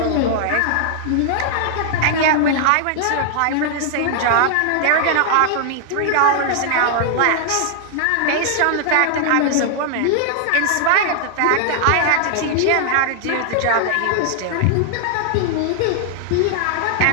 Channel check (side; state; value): both; different; correlation -0.01